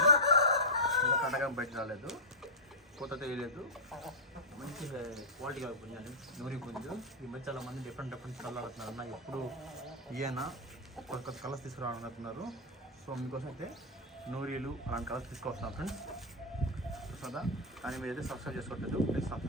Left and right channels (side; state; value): both; normal; correlation -0.08